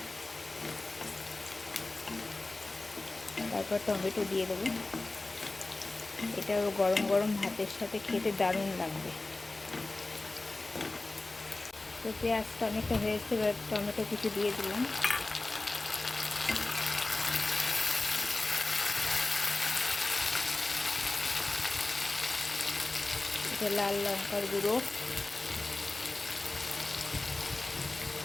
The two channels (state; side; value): quieter; right; 3.1 dB